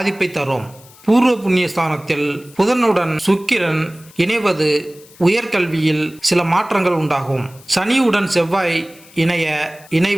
தரும். பூர்வ புண்ணிய ஸ்தானத்தில் புதனுடன் சுக்கிரன் இணைவது உயர்கல்வியில் சில மாற்றங்கள் உண்டாகும். சனியுடன் செவ்வாய்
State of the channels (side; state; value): left; noise; hiss, 24 dB below the sound